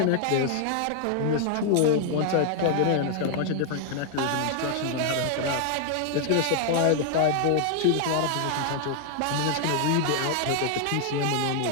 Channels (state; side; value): different; both; correlation 0.00